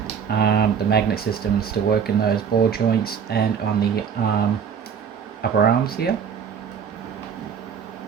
The magnet systems still work in those ball joints and on the upper arms here.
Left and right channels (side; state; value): left; quieter; 7.2 dB